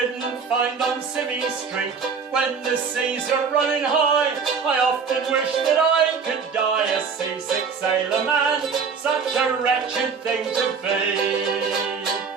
find on Civvy Street. When the seas are running high, I often wish that I could die a seasick sailor man, such a wretched thing to be.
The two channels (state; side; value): quieter; left; 5.7 dB